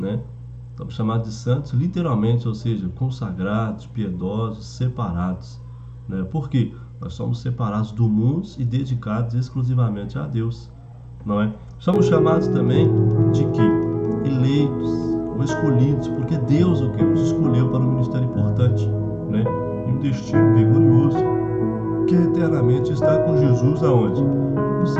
Estamos chamados de santos literalmente, ou seja, consagrados, piedosos, separados, né? Por quê? Nós somos separados do mundo e dedicados exclusivamente a Deus, não é? Somos chamados também de quê? Eleitos ou escolhidos, porque Deus o que os escolheu para um ministério importante, né? E um destino glorioso, que eternamente está com Jesus aonde? Nos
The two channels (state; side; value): identical; both; correlation 1.00